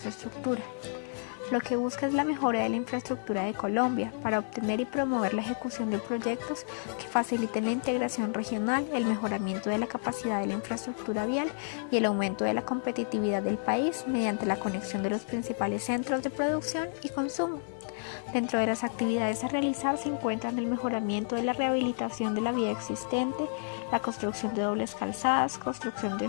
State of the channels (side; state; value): right; silent; digital silence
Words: estructura. Lo que busca es la mejora de la infraestructura de Colombia para obtener y promover la ejecución de proyectos que faciliten la integración regional, el mejoramiento de la capacidad de la infraestructura vial y el aumento de la competitividad del país mediante la conexión de los principales centros de producción y consumo. Dentro de las actividades a realizar se encuentran el mejoramiento de la rehabilitación de la vía existente, la construcción de dobles calzadas, construcción de